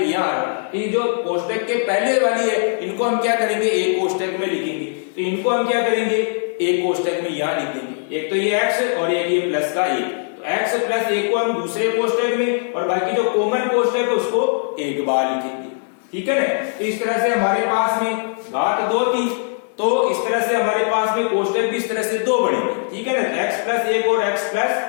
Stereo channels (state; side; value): silent; right; 66 dB below the other